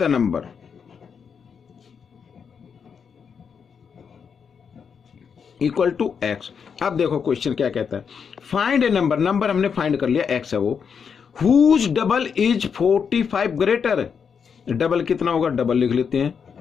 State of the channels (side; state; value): right; quieter; 6.6 dB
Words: number. Equal to x। अब देखो क्वेश्चन क्या कहता है, फाइंड ए नंबर हमने फाइंड कर लिया, x है वो, whose double is 45 greater, double कितना होगा डबल लिख लेते हैं,